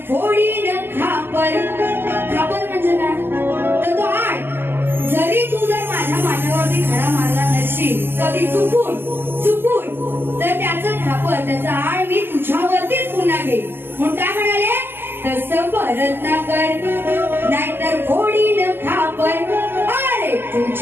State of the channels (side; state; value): left; late; 0.10 ms